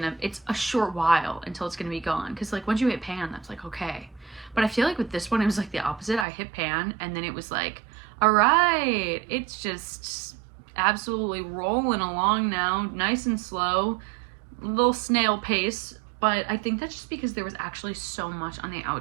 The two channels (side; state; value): left; drops out; at 6.2 s